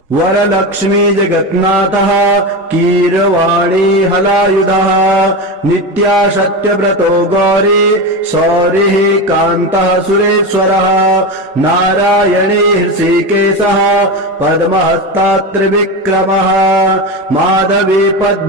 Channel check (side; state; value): both; normal; correlation 0.19